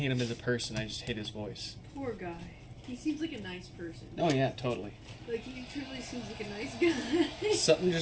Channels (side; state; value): both; identical; correlation 1.00